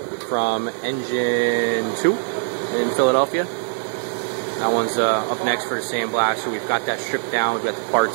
from Engine 2 in Philadelphia. That one's up next for the sandblaster. We've got that stripped down. We've got the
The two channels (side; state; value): left; silent; 61 dB below the other